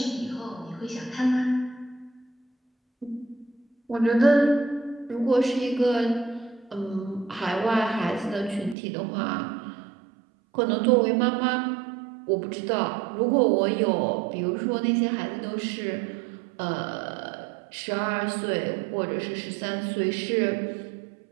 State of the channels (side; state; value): left; drops out; at 8.8 s